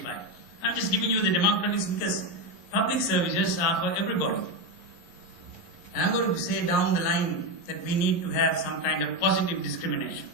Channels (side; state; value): right; late; 11 ms